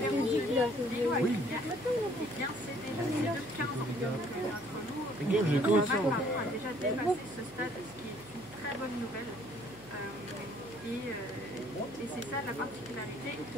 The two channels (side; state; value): left; noise; hum, 23 dB below the sound